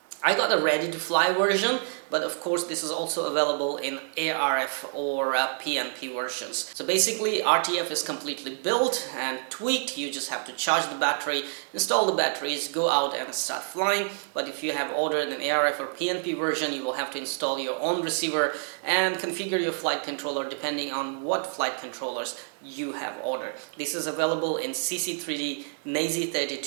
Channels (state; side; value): silent; left; 60 dB below the other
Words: I got a ready to fly version, but of course this is also available in ARF or PNP versions. So basically RTF is completely built and tweaked. You just have to charge the battery, install the batteries, go out and start flying. But if you have ordered an ARF or PNP version, you will have to install your own receiver and configure your flight controller depending on what flight controllers you have ordered. This is available in CC3D,